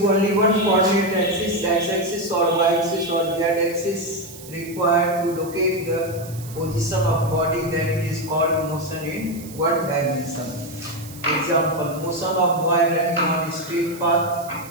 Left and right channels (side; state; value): right; noise; hiss, 17 dB below the sound